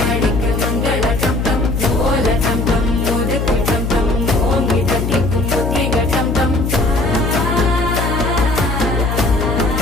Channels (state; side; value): noise; left; hum, 1 dB below the sound